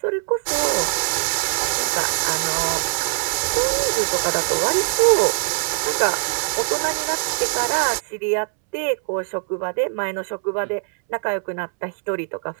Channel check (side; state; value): left; silent; 64 dB below the other